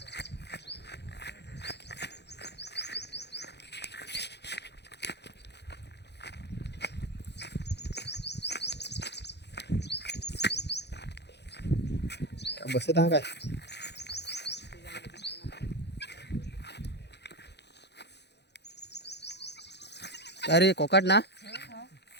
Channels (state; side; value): late; right; 0.50 ms